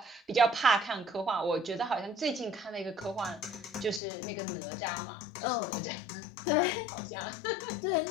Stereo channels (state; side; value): drops out; right; at 4.0 s